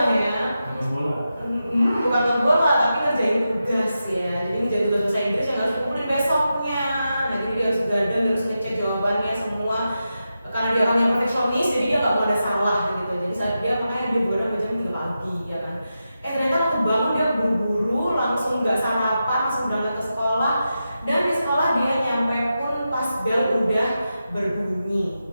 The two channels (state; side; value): inverted; both; correlation -0.89